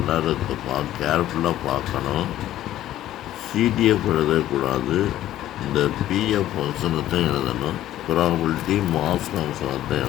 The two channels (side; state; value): right; quieter; 13.3 dB